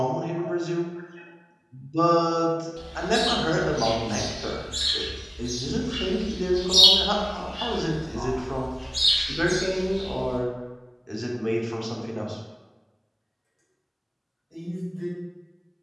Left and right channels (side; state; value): both; identical; correlation 1.00